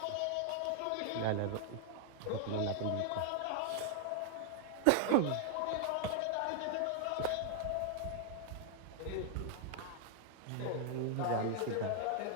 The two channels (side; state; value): both; different; correlation 0.00